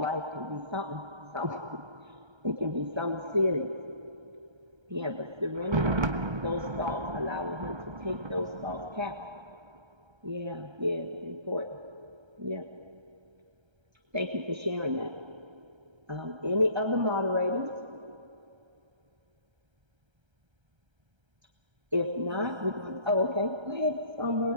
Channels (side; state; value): left; late; 1.3 ms